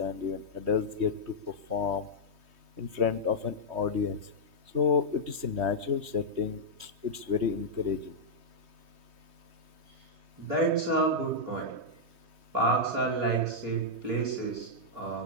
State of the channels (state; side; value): late; left; 3.2 ms